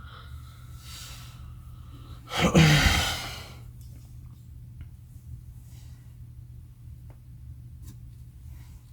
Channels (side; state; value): both; identical; correlation 1.00